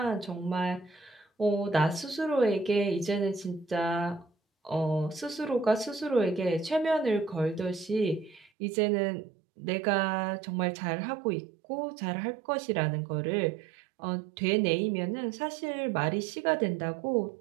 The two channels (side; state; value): left; drops out; at 8.5 s